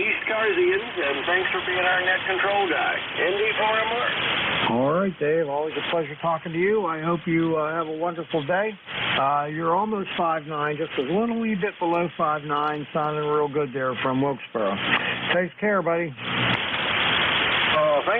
and thanks for being our net control guy. ND4MR. All right, Dave. Always a pleasure talking to you. I hope you have a wonderful day. You're almost 5'9", just a little wee bit below 5'9", sounding real good there from Wilkesboro. Take care, buddy.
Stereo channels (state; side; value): identical; both; correlation 1.00